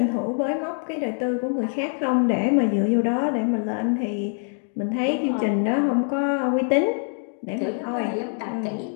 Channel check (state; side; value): silent; right; 56 dB below the other